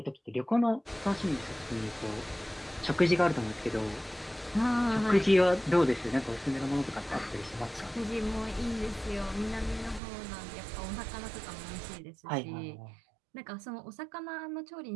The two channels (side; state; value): left; drops out; at 10.0 s